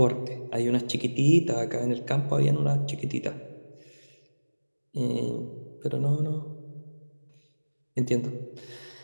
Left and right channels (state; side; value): inverted; both; correlation -1.00